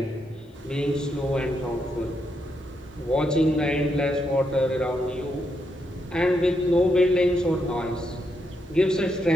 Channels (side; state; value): both; normal; correlation 0.80